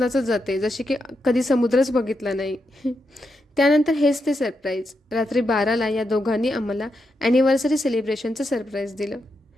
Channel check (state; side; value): normal; both; correlation 0.84